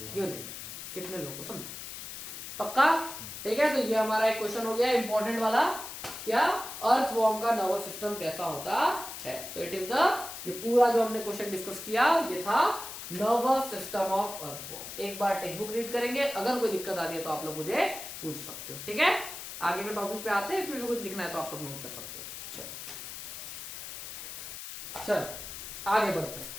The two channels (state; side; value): noise; left; hiss, 9 dB below the sound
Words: unit. कितने लोगों को समझा, पक्का, ठीक है। तो ये हमारा एक क्वेश्चन हो गया इंपॉर्टेंट वाला, क्या अर्थवॉर्म का नर्वस सिस्टम कैसा होता है। तो इट इज द, ये पूरा जो हमने क्वेश्चन डिस्कस किया ये था नर्वस सिस्टम ऑफ अर्थवॉर्म। एक बार टेक्स्ट बुक रीड करेंगे, अगर कोई दिक्कत आती है तो आप लोग मुझे पूछ सकते हो, ठीक है। आगे के टॉपिक पे आते हैं, इसमें कुछ लिखना है तो आप लोग नोट कर सकते हो। चल आगे बढ़ते हैं।